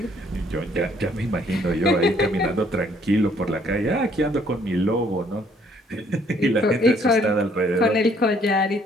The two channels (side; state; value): both; normal; correlation 0.64